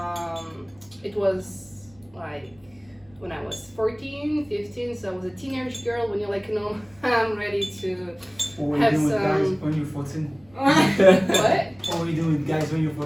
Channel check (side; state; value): right; noise; rumble, 30 dB below the sound